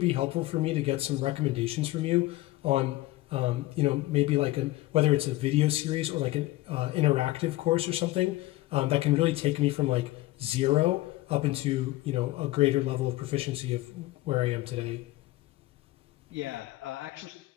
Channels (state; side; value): quieter; right; 17.8 dB